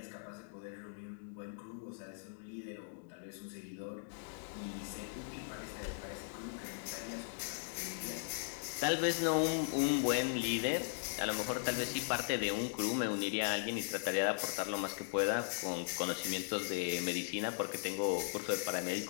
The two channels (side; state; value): right; silent; digital silence